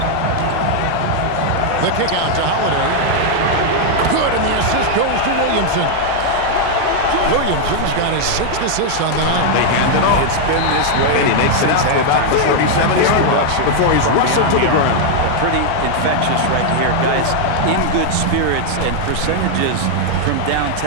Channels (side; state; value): both; different; correlation 0.00